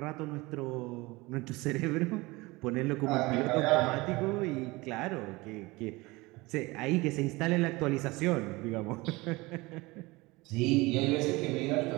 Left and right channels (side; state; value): left; quieter; 22.5 dB